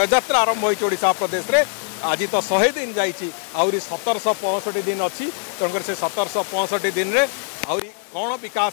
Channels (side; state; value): right; silent; 65 dB below the other